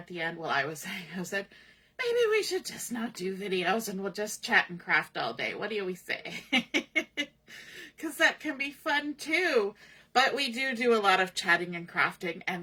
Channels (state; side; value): identical; both; correlation 1.00